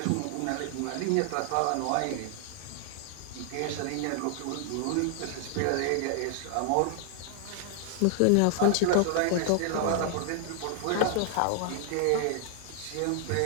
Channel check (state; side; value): different; both; correlation -0.01